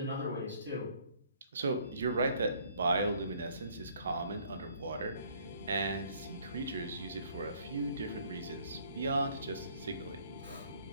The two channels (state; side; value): inverted; both; correlation -0.61